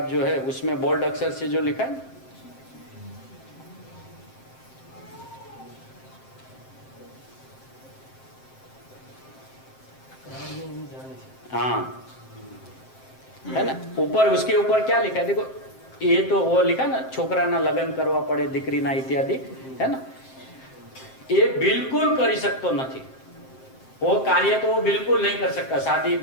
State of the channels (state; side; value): late; right; 7.6 ms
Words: जो है उसमें बोल्ड अक्षर से जो लिखा है, हाँ है ना, ऊपर उसके ऊपर क्या लिखा है देखो। ये तो वो लिखा ना, छोकरा ना लगन करवा पड़े, दीकरी ना इत्यादि, है ना। ये बिल्कुल कर सकते नहीं, वो कार्य तो वो बिल्कुल नहीं कर सकता, शादी